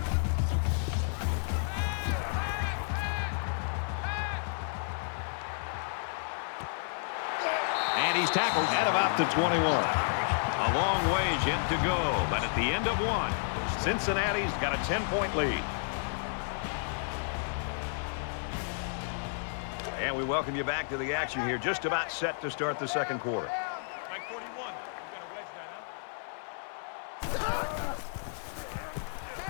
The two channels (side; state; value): right; silent; 57 dB below the other